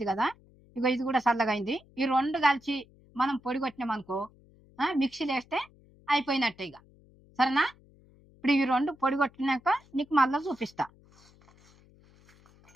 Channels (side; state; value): left; noise; hum, 28 dB below the sound